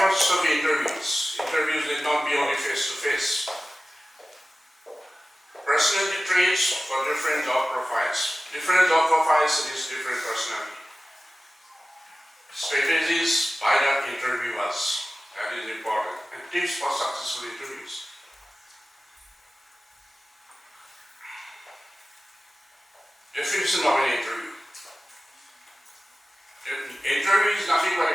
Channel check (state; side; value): normal; both; correlation 0.96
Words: of interviews. Interviews need not be only face-to-face. Personality traits for different job profiles. Different job profiles is different personality. Strategies by the interviewers. That is important. And tips for successful interviews. Definition of an interview. Interview is nothing but